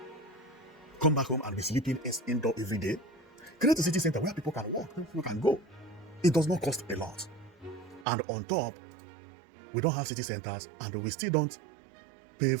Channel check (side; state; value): left; drops out; at 8.1 s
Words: Come back home and be sleeping indoor every day. Create a city center where people can walk, people can go. It does not cost a lot. And on top, we don't have city centers and we still don't